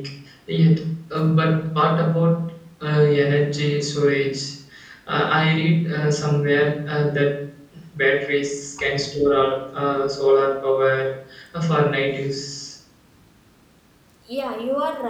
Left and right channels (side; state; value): both; identical; correlation 1.00